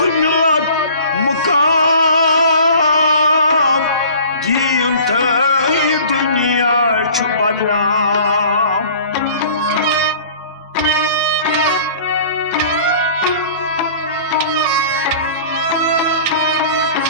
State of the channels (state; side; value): inverted; both; correlation -0.46